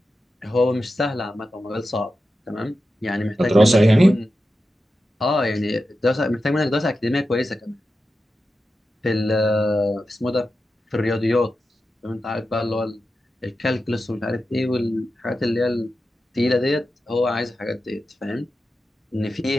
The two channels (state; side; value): normal; both; correlation 0.91